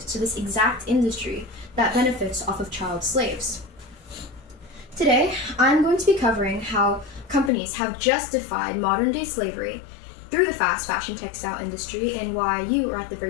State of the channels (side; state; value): right; drops out; at 7.5 s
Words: this exact industry that benefits off of child slaves. Today, I'm going to be covering how companies have justified modern-day slavery through the fast fashion textile industry and why you are at the